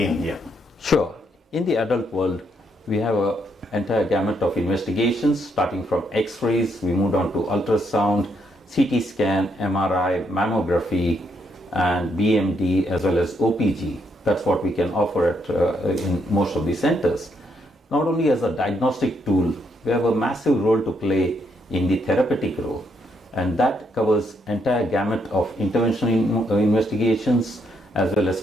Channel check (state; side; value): normal; both; correlation 0.75